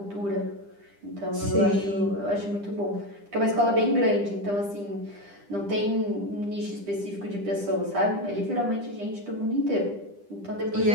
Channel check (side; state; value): left; late; 10 ms